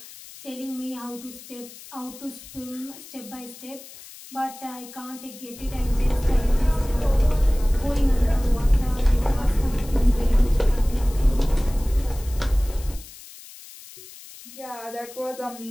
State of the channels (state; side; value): noise; left; hiss, 18 dB below the sound